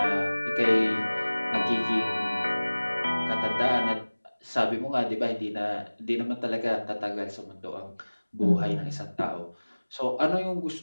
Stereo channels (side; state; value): both; inverted; correlation -1.00